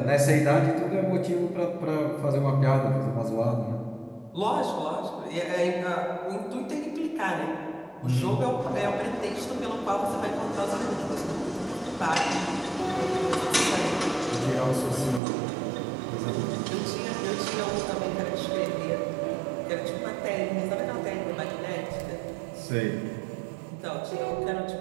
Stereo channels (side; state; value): left; drops out; at 15.2 s